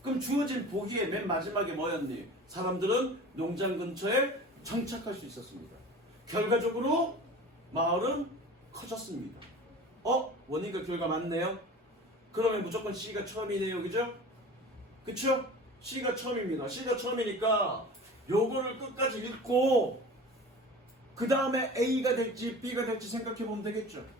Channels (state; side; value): normal; both; correlation 0.38